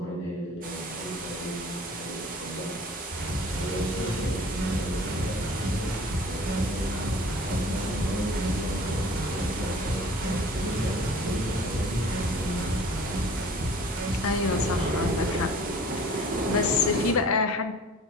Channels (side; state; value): both; normal; correlation 0.47